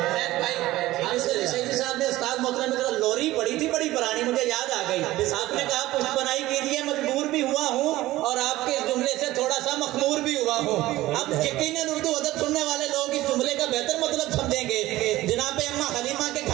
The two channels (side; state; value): left; quieter; 16.8 dB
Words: मोहतरम में लोरी पड़ी थी बड़ी पुरानी, मुझे याद आ गई। आपने कहा पुष्प बनाई कीजिए, मजबूर भी हुआ हूँ और आपके इस जुमले से थोड़ा सा मखमूर भी हुआ हूँ। अब यकीनन उर्दू अदब सुनने वाले लोग इस जुमले का बेहतर मतलब समझेंगे। जनाब अम्मा हलीमा के